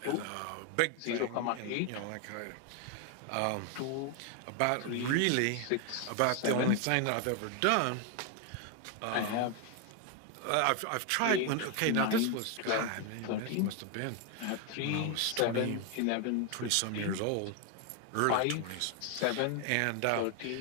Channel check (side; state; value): both; different; correlation 0.01